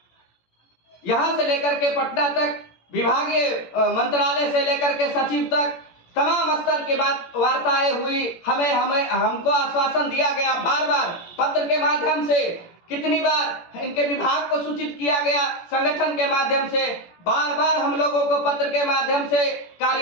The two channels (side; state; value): right; late; 17 ms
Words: यहां से लेकर के पटना तक, विभागीय मंत्रालय से लेकर के सचिव तक तमाम स्तर की वार्ताएं हुई। हमको आश्वासन दिया गया, बार बार पत्र के माध्यम से, कितनी बार इनके विभाग को सूचित किया गया, संगठन के माध्यम से बार बार हम लोगों को पत्र के माध्यम से